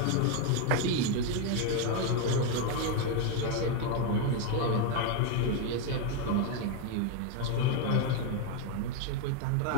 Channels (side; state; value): both; different; correlation 0.01